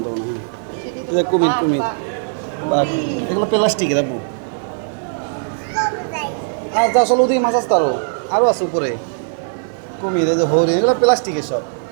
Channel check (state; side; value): silent; left; 60 dB below the other